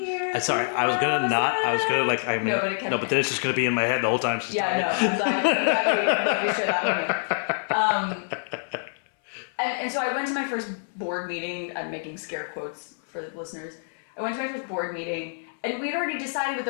Sorry, I was gonna like, I mean, no, but then it's just gonna be in my head the whole time she's talking. And so I went to my first board meeting. I'm making scare quotes for the listeners. I went to my first board meeting, and we'd already decided what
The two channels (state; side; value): silent; right; 61 dB below the other